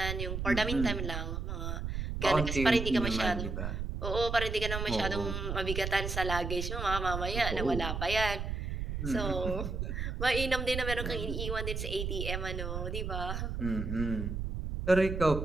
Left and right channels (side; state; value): right; noise; rumble, 3 dB below the sound